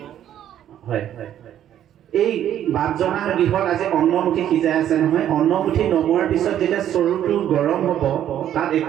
হয় এই বাপজনাৰ গৃহত আজি অন্নমুঠি সিজাই আছে নহয়, অন্নমুঠি নমোৱাৰ পিছত যেতিয়া চৰুটো গৰম হ'ব, তাত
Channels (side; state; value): left; quieter; 10.9 dB